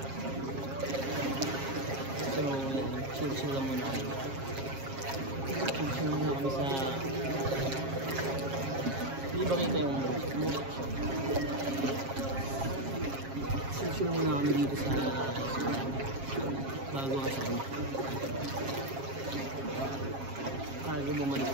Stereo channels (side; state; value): left; late; 7.4 ms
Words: So, chill lang muna kami. Chill muna kami sa... Hindi ba kita yung music shop? Chill muna kami dito sa... bago kasi kami. Bago bumalik